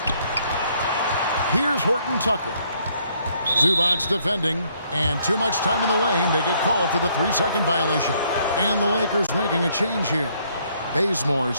Here's Horton Tucker. Zubats defending, and too much time in the lane. They get called for the 3-second violation. And the Lakers making a change here. Bazemore's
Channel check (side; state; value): both; inverted; correlation -0.68